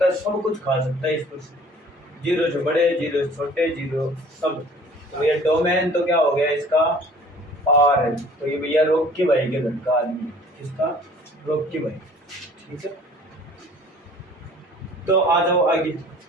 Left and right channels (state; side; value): normal; both; correlation 0.50